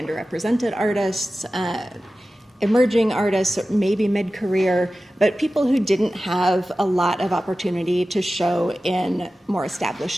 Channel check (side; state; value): both; normal; correlation 0.95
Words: artists, emerging artists, maybe mid-career, but people who didn't have a lot of opportunity to show in more